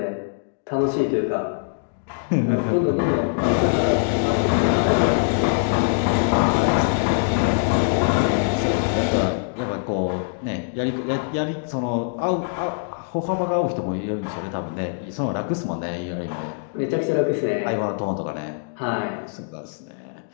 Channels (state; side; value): silent; right; digital silence